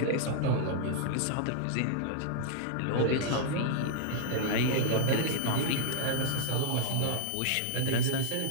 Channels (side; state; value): both; different; correlation -0.01